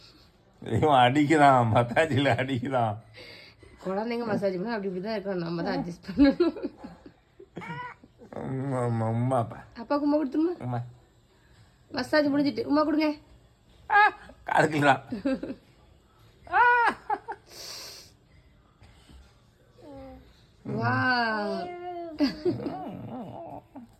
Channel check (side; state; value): both; identical; correlation 1.00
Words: இவன் அடிக்கிறான், மசாஜில் அடிக்கிறான். குழந்தைங்க மசாஜ் பண்ணா அப்படி இப்படி தான் இருக்கணும், நம்ம தான் அட்ஜஸ்ட் பண்ணணும். உமாப்பா அப்பாவுக்கு உமா கொடுத்துருமா? உமா மசாஜ் முடிஞ்சிட்டு உமா கொடுங்க. காதுக்கலாம். வா